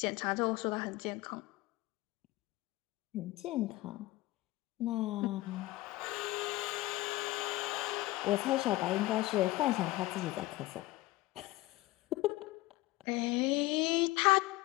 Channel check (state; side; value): quieter; right; 18.7 dB